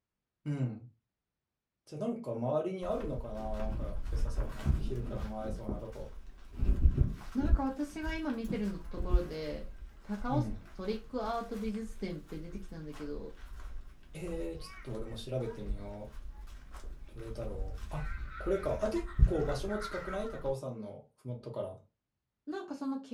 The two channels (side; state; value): both; identical; correlation 1.00